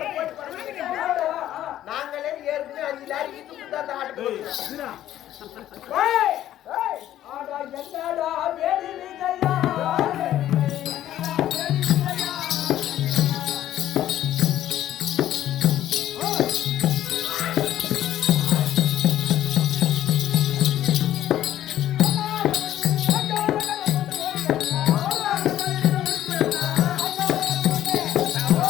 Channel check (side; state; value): right; quieter; 12.5 dB